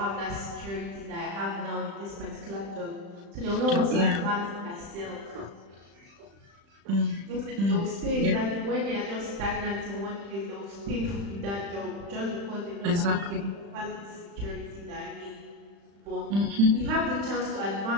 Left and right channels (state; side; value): late; left; 35 ms